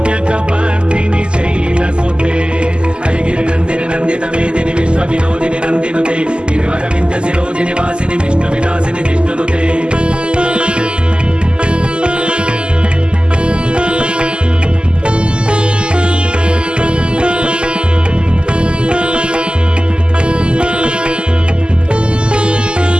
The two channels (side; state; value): left; late; 0.050 ms